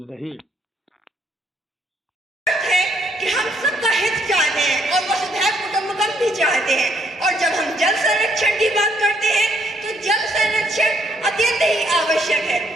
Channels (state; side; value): normal; both; correlation 0.70